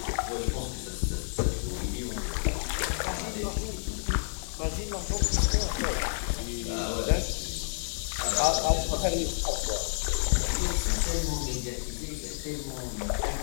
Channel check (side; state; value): right; silent; digital silence